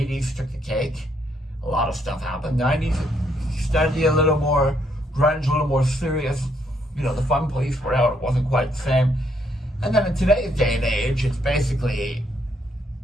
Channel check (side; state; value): both; normal; correlation 0.73